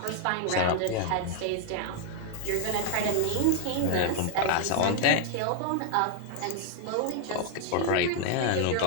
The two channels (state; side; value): different; both; correlation 0.00